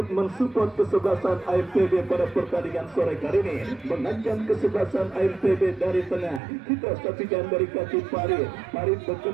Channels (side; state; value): left; drops out; at 6.4 s